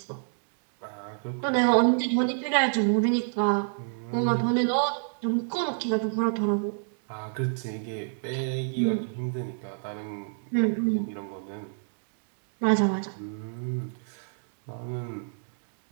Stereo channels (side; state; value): left; silent; digital silence